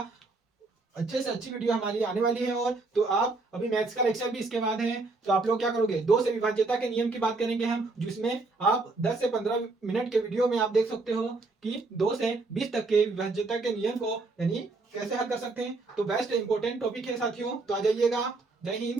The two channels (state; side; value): quieter; left; 3.5 dB